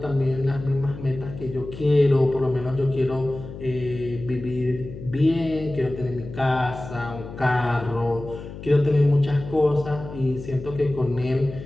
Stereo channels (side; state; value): left; noise; hum, 12 dB below the sound